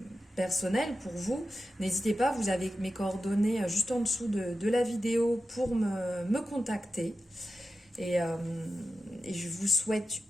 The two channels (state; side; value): normal; both; correlation 0.91